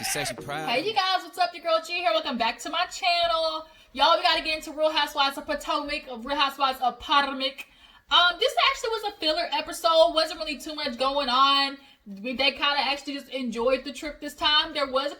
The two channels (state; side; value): identical; both; correlation 1.00